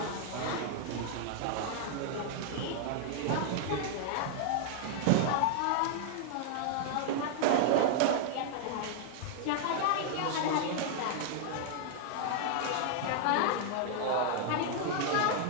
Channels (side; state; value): both; different; correlation 0.00